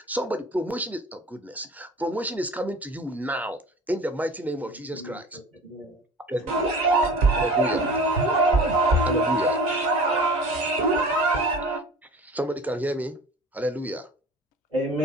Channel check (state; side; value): normal; both; correlation 0.40